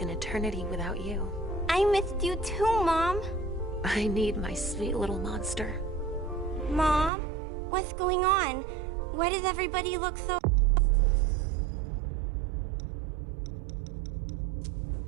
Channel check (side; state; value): left; drops out; at 7.1 s